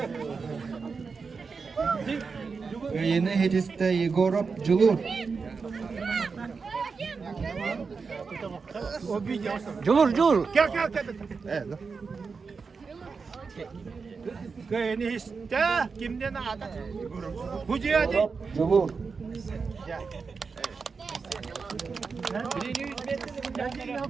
Yeni Hediste Igorov Julur. O bir yasa. Julur. Gel. Evet. Kayını iste kimden ada? Hucu hadi. Julur.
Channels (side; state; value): left; quieter; 5.0 dB